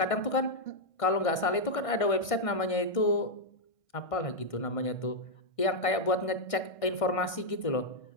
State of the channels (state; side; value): late; right; 1.6 ms